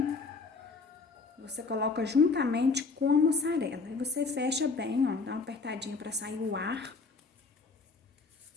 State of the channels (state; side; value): quieter; right; 4.3 dB